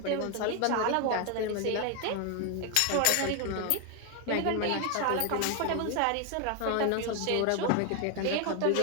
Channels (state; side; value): different; both; correlation 0.01